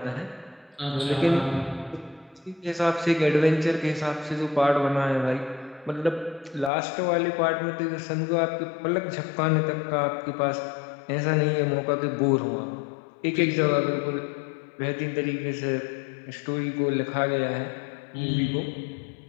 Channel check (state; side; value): drops out; right; at 6.7 s